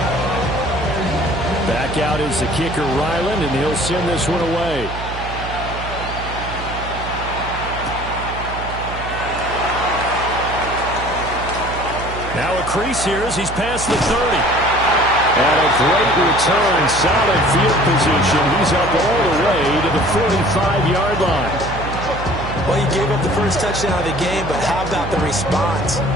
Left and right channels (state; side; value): noise; right; hum, 9 dB below the sound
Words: Back out is the kicker, Ryland, and he'll send this one away. Now a crease here as he's past the 30. And a great return, solid field position. He's up all the way to the 45-yard line. Well, he gave up the first touchdown of the game, but how about the response?